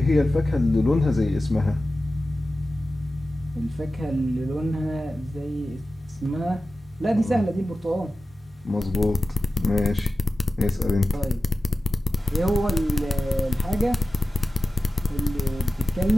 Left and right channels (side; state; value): both; normal; correlation 0.95